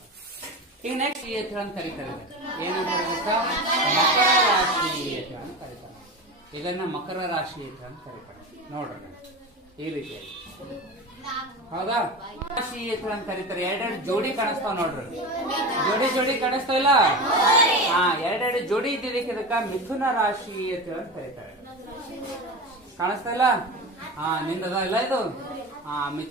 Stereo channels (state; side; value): normal; both; correlation 0.26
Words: ಈಗ ನೆಕ್ಸ್ಟ್ ಅಂತ ಕರೀತಾರೆ. ಏನಂತ ಮಕರ ರಾಶಿ ಅಂತ ಕರೀತಾರೆ. ಇದನ್ನ ಮಕರ ರಾಶಿ ಅಂತ ಕರೀತಾರೆ. ನೋಡ್ರಿ ಈ ರೀತಿಯಾಗಿ, ಹೌದಾ? ರಾಶಿ ಅಂತ ಕರೀತಾರೆ. ಎರಡೆರಡು ಜೋಡಿ ಕಾಣಿಸ್ತಾವ ನೋಡ್ರಿ. ಜೋಡಿ ಕಾಣಿಸ್ತಾವಿಲ್ಲ? ಹಾ, ಎರಡೆರಡು ಜೋಡಿ ಇದ್ದಿದ್ದಕ್ಕೆ ಇದಕ್ಕ ಮಿಥುನ ರಾಶಿ ಅಂತ ಕರೀತಾರೆ. ಕಾಣಿಸ್ತಾ ಇಲ್ಲ? ಹಾ, ನಿಂದದ ಇಲ್ಲ ಇದು? ಹಾ,